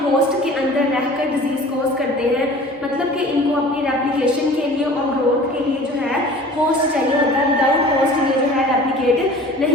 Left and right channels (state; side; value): normal; both; correlation 0.45